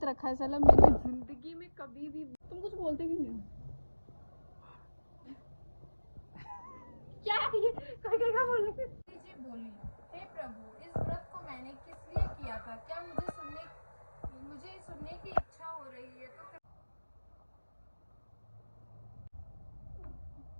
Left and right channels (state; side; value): inverted; both; correlation -1.00